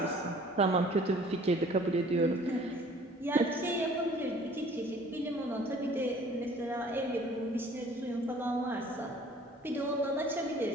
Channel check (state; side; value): normal; both; correlation 0.52